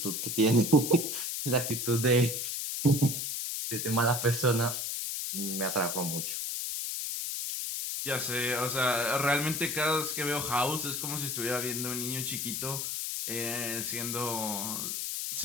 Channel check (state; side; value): noise; left; hiss, 2 dB below the sound